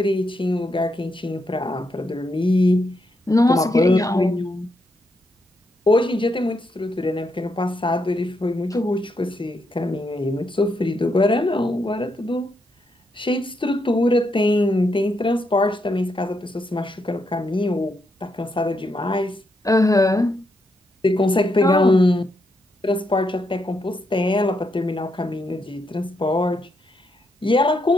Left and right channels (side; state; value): both; normal; correlation 0.79